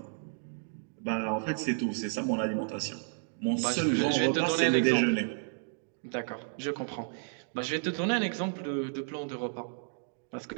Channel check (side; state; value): left; silent; digital silence